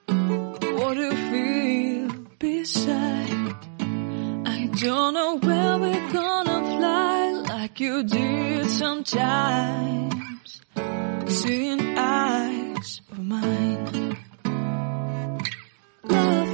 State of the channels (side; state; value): left; silent; digital silence